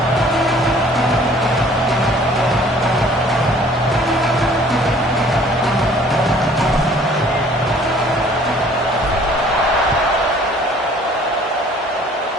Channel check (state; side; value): normal; both; correlation 0.54